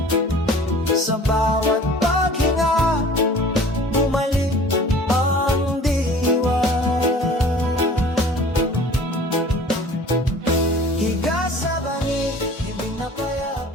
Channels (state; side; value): normal; both; correlation 0.46